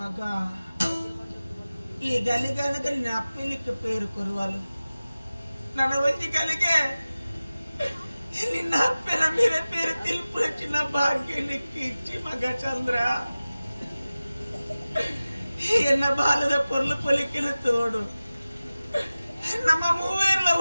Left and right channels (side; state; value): both; inverted; correlation -0.97